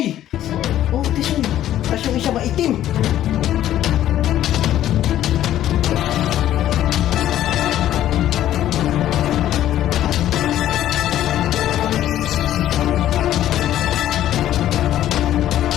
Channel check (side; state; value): right; quieter; 12.4 dB